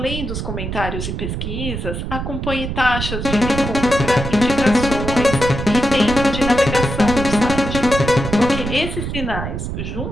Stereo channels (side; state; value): right; noise; rumble, 5 dB below the sound